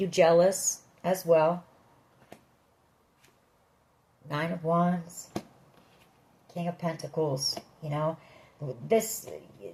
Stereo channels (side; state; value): both; identical; correlation 1.00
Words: jealous as well. Nine of Wands, King of Pentacles. You know, this,